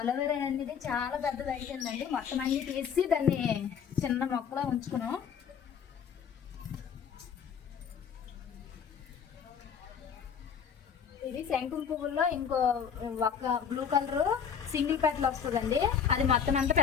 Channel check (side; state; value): right; quieter; 7.4 dB